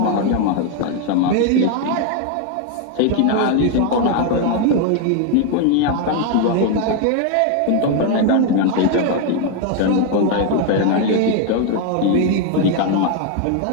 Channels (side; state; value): both; different; correlation 0.01